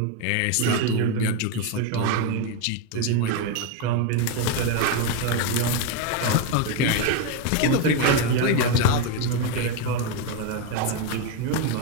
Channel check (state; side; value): different; both; correlation 0.02